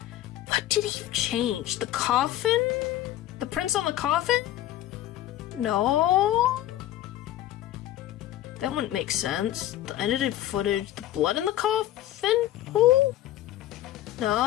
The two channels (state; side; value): quieter; right; 13.5 dB